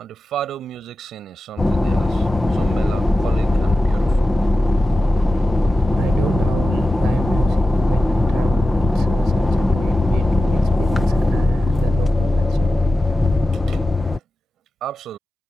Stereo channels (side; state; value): both; normal; correlation 0.93